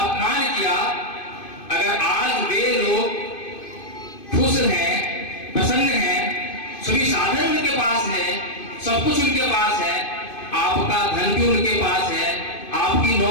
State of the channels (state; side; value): late; right; 2.5 ms